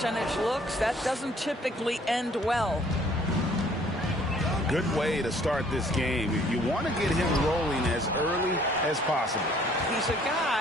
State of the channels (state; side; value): normal; both; correlation 0.59